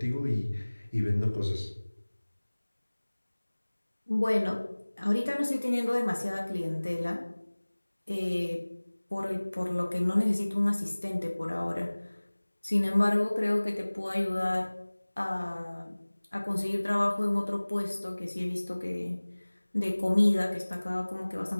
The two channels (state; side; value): inverted; both; correlation -1.00